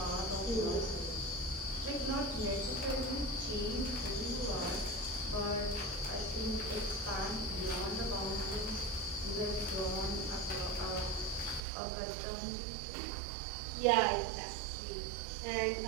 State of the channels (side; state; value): left; drops out; at 11.6 s